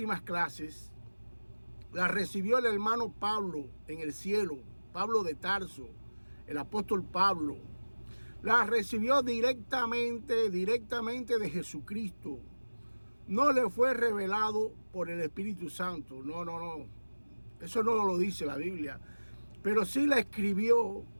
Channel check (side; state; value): both; inverted; correlation -1.00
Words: clases las recibió el hermano Pablo en el cielo, Pablo de Tarso, el apóstol Pablo. Las recibió directamente de Jesucristo. No le fue revelado por el Espíritu Santo. No. Eso no lo dice la Biblia. Pero sí la escribió